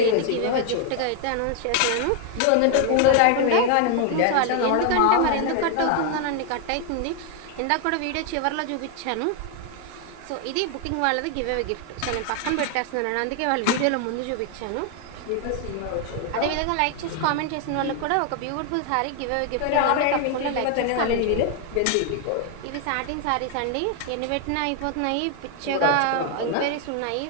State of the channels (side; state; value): both; different; correlation 0.00